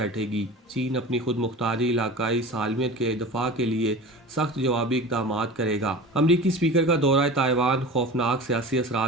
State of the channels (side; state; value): both; normal; correlation 0.35